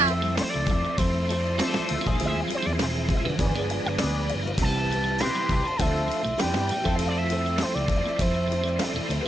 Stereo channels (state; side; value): normal; both; correlation 0.87